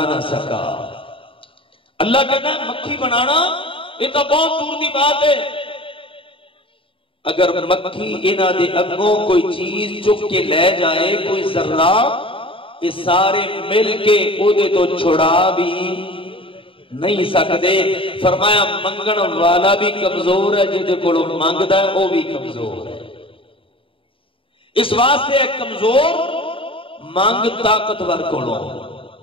نہ سکا. اللہ کہتا ہے مکھی بنانا یہ تو بہت دور دی بات ہے. اگر مکھی انہاں دے اگوں کوئی چیز چک کے لے جائے، کوئی ذرہ، یہ سارے مل کے اودے تو چھڑا بھی نہیں سکتے. فرمایا منگن والا بھی کمزور ہے، جہدے کولو مانگدا ہے وہ بھی کمزور ہے. اس واسطے ہے کمزور مانگ طاقتور کولو.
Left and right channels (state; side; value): late; right; 0.26 ms